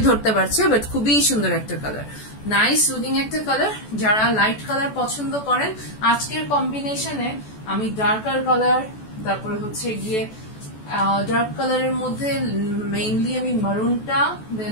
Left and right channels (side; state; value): right; late; 14 ms